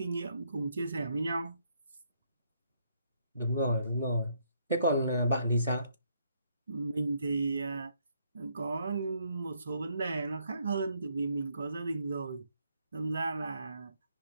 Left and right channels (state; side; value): inverted; both; correlation -0.72